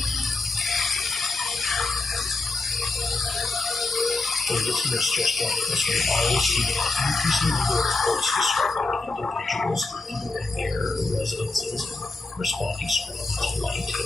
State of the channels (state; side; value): quieter; right; 3.4 dB